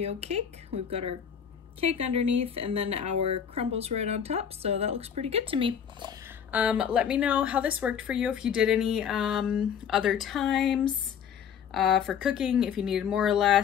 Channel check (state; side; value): quieter; right; 8.0 dB